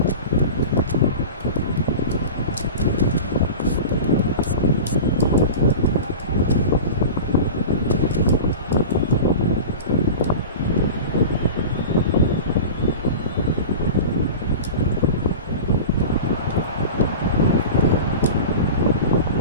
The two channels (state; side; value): inverted; both; correlation -0.32